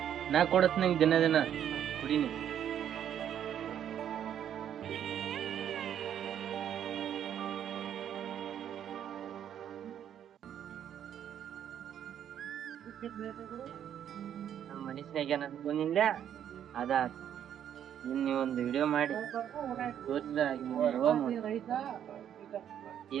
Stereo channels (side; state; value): left; quieter; 9.7 dB